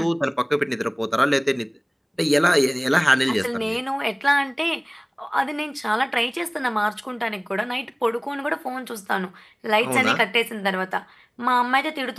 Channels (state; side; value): identical; both; correlation 1.00